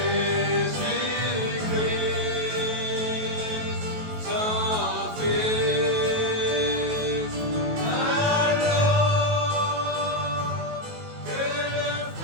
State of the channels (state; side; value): late; left; 19 ms